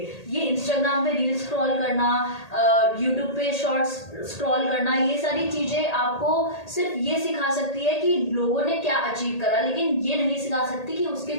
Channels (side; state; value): right; late; 1.8 ms